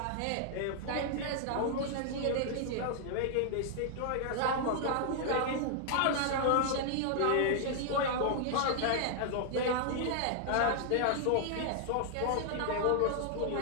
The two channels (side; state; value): both; different; correlation -0.01